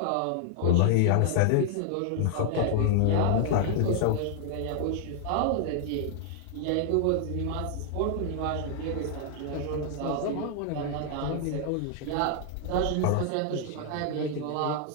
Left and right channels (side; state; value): both; different; correlation -0.01